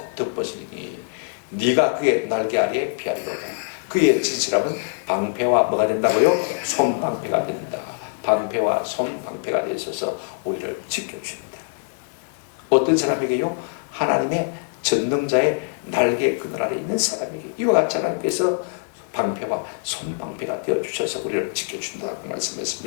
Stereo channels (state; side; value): silent; right; 63 dB below the other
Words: 덮으시니 네가 그의 날개 아래에 피하리로다. 그의 진실함은 방패와 뭐가 된다고요? 손방패가 된다. 방패와 손방패가 되어 있어서 우리를 지켜줍니다. 어떤 사람에게요? 하나님의 전능자의 날개 그늘 아래 있는 사람에게 이와 같이 하나님께서 방패와 손방패가 되어주셔서 우리를 지켜준다고